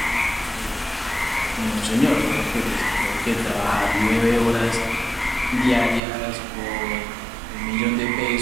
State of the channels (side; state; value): left; drops out; at 6.0 s